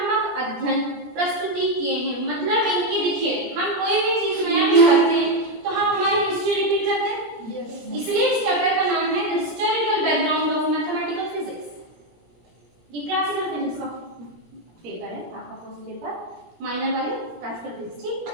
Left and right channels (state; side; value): late; left; 17 ms